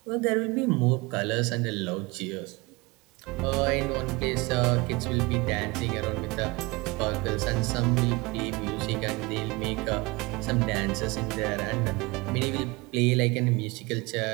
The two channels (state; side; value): quieter; left; 24.8 dB